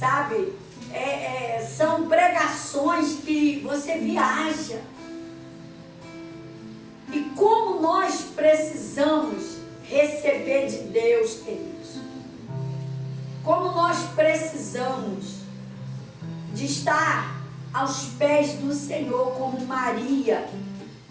São pregações que você viaja. E como nós precisamos receber de Deus, queridos. Como nós precisamos de estar aos pés do Senhor, como Maria,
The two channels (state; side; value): identical; both; correlation 1.00